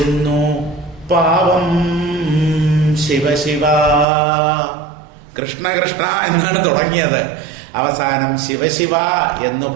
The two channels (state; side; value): drops out; left; at 4.0 s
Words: പാവം ശിവശിവ. കൃഷ്ണ കൃഷ്ണ എന്നാണ് തുടങ്ങിയത്, അവസാനം ശിവശിവ എന്ന്